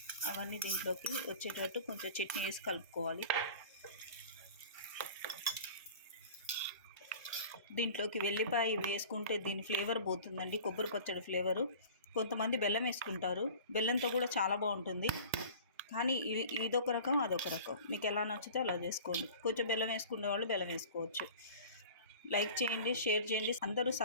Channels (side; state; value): both; inverted; correlation -0.42